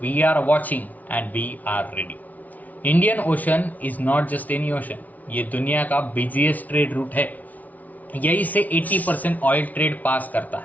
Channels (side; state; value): right; late; 0.074 ms